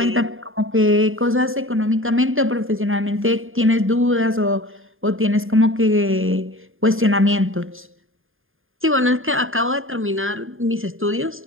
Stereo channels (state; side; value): late; left; 0.59 ms